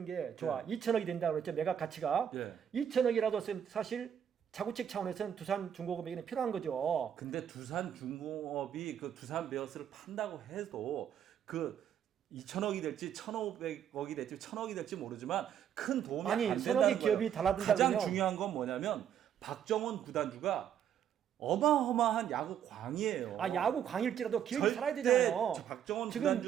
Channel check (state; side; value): quieter; left; 9.2 dB